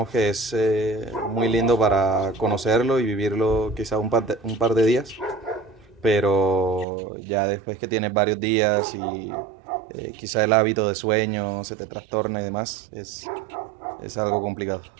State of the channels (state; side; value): drops out; left; at 6.9 s